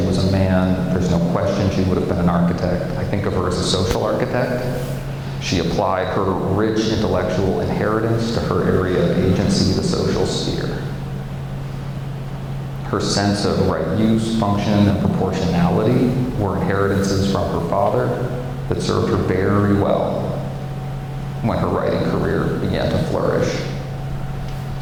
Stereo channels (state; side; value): identical; both; correlation 1.00